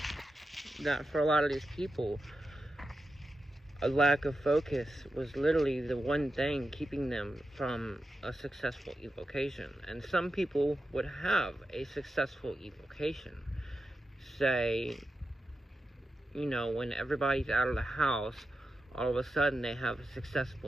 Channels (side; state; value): both; normal; correlation 0.90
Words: that for a lot of these people, a lack of focus was literally the one thing keeping them from a successful evocation. And some people would have a successful evocation. Say, when everybody's out of the house, all of a sudden they have a